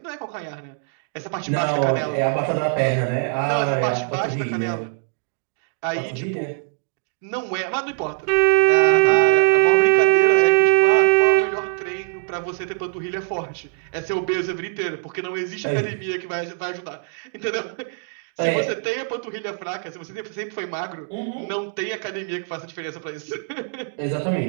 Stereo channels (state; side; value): silent; left; 62 dB below the other